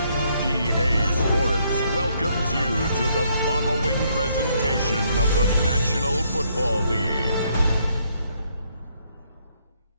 EA Sports welcomes you to the following presentation of the National Football League.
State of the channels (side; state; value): both; inverted; correlation -0.71